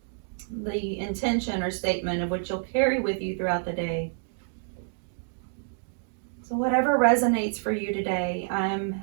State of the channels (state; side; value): silent; left; digital silence